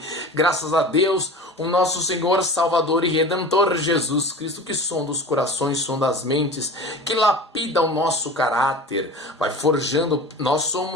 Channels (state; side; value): normal; both; correlation 0.36